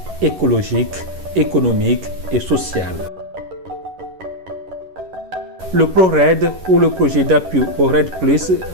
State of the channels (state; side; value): late; left; 11 ms